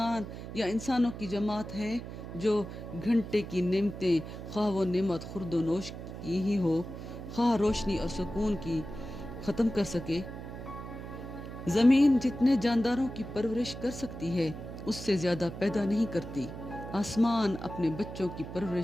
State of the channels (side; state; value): right; noise; hum, 10 dB below the sound